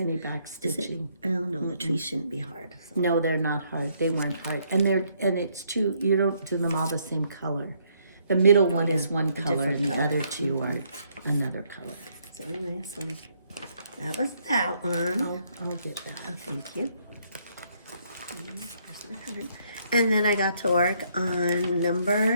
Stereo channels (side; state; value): both; inverted; correlation -0.71